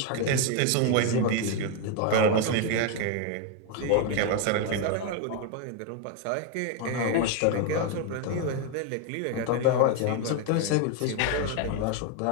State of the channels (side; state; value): both; different; correlation 0.01